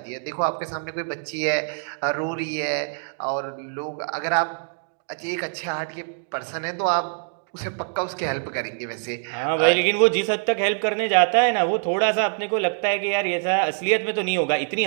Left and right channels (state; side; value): silent; left; digital silence